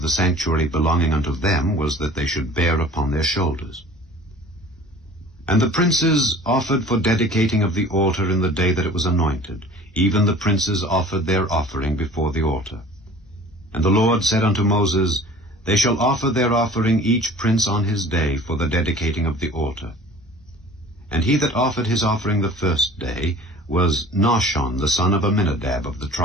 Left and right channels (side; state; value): both; normal; correlation 0.46